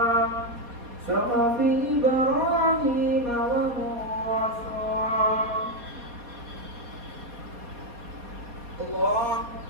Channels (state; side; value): late; left; 4.2 ms